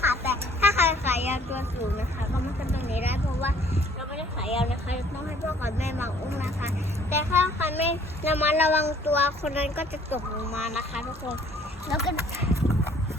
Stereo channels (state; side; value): normal; both; correlation 0.58